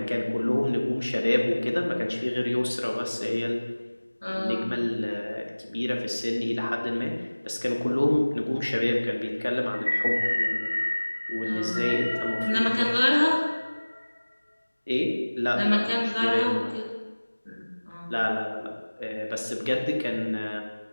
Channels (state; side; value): inverted; both; correlation -1.00